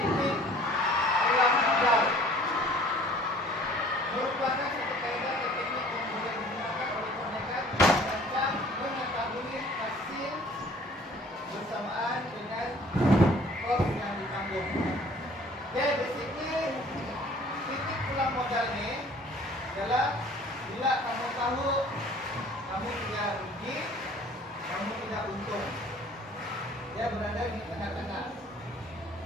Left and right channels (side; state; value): both; normal; correlation 0.52